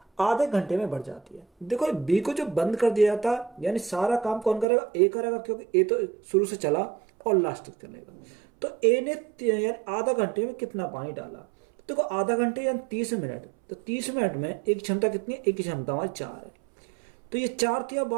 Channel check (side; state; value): left; drops out; at 4.7 s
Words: आधे घंटे में भर जाती है। देखो, बी को जो बंद कर दिया जाता है यानी सारा काम कौन करेगा, ए करेगा, क्योंकि ए तो शुरू से चला और लास्ट तक चलेगा। तो ए ने यानी आधा घंटे में कितना पानी डाला। देखो, आधा घंटे यानी 30 मिनट, तो 30 मिनट में एक क्षमता कितनी है, एक की क्षमता हमारी 4 है। तो ये 4 या